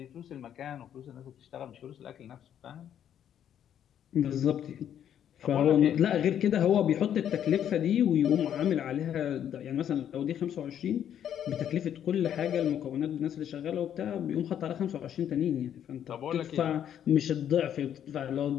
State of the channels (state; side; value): quieter; right; 9.8 dB